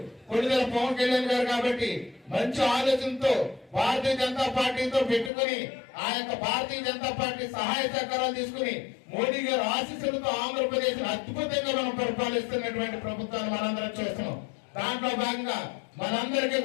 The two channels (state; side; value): drops out; right; at 5.3 s